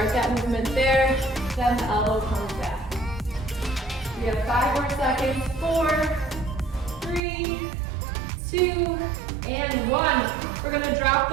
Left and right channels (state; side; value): drops out; left; at 7.2 s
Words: that movement there, then the elbow comes back. We have 5 more seconds. 4, 3, 2, and 1. We're gonna drop